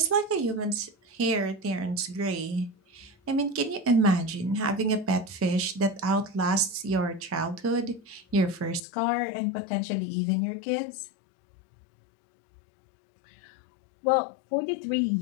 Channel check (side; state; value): right; drops out; at 8.8 s